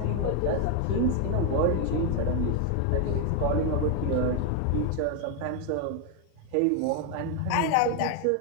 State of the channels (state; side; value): different; both; correlation 0.01